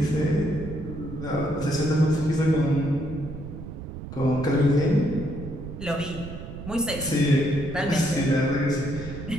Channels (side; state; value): right; noise; rumble, 10 dB below the sound